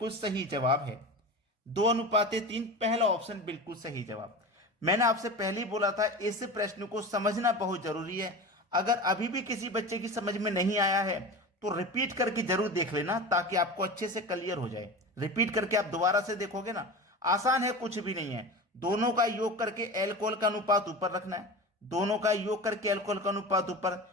सही जवाब है। 2:3 पहला ऑप्शन बिल्कुल सही जवाब। मैंने आपसे पहले ही बोला था, इस प्रश्न को समझना बहुत जरूरी है। अगर अभी भी किसी बच्चे की समझ में नहीं आया है तो रिपीट करके जरूर देख लेना, ताकि आपको अच्छे से क्लियर हो जाए। रिपीट करके आप दोबारा से देखोगे ना, आसान है, कुछ भी नहीं है। दोनों का योग करके एल्कोहल का अनुपात ऊपर रखना है, दोनों का योग करके एल्कोहल का अनुपात ऊपर,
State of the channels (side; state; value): both; normal; correlation 0.30